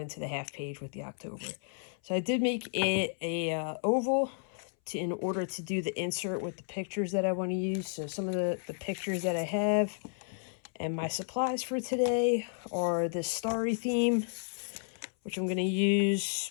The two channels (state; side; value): silent; right; 56 dB below the other